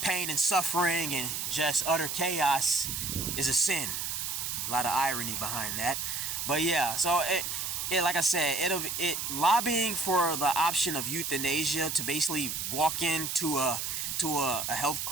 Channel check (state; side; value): noise; right; hiss, 3 dB below the sound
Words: pain and suffering and just utter chaos is a sin. A lot of irony behind that. But yeah, so it like I said, it lobbying for the option of euthanasia, to basically walk into a